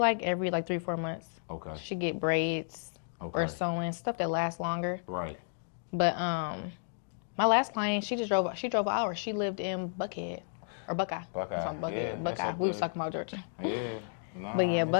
every 3-4 months. Okay. She get braids or sewing, stuff that lasts longer. Right. But my last client, she drove an hour. She lived in Buckhead or Buckeye. Buckeye. Yeah. Buckeye. We was talking about Georgia. Yeah. Nah, but yeah,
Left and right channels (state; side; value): silent; right; digital silence